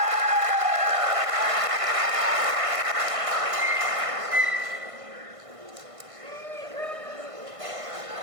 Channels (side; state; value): left; late; 1.5 ms